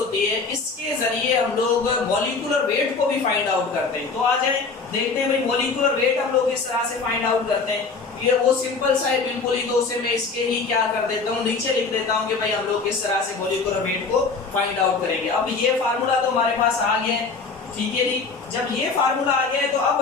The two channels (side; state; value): right; quieter; 4.5 dB